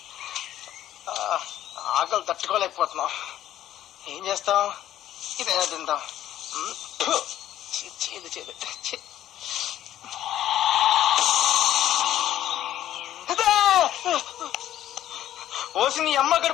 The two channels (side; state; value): right; quieter; 12.2 dB